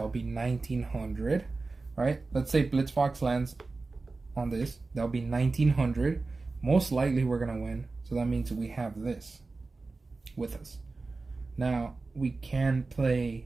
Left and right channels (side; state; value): left; quieter; 3.7 dB